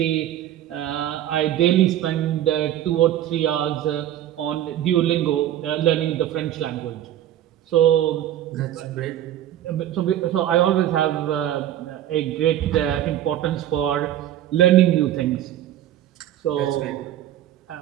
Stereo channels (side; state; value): left; quieter; 12.0 dB